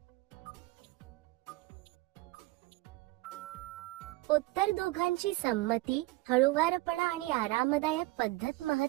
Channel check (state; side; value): quieter; left; 20.0 dB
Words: उत्तर दोघांची संमती, हळूवारपणा आणि आरामदायक पद्धत